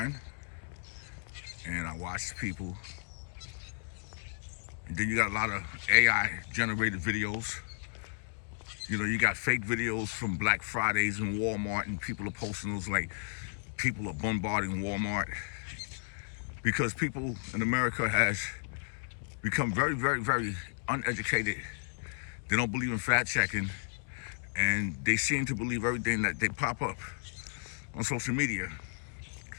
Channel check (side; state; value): right; silent; digital silence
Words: and I watch people. And then you got a lot of AI generated videos. You got fake videos from Black Fridays in Walmart, and people are posting those like people are bombarding Walmart because people in America has become very, very, very uneducated. They don't believe in fact checking, and they seem to believe everything that they pop up on social media.